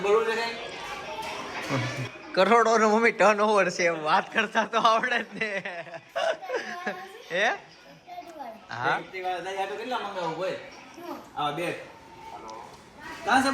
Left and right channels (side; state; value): both; identical; correlation 1.00